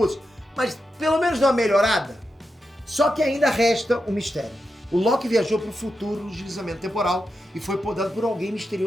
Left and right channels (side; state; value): both; normal; correlation 0.88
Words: mas pelo menos deu uma melhorada. Só que ainda resta um mistério. O Loki viajou para o futuro no deslizamento temporal e foi podado por alguém